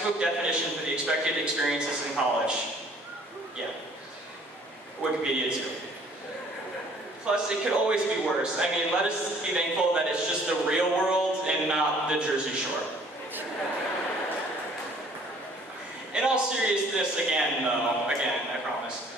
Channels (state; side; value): normal; both; correlation 0.57